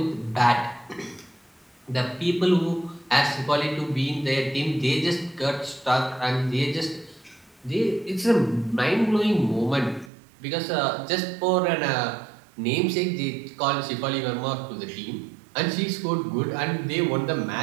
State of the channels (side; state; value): left; drops out; at 10.1 s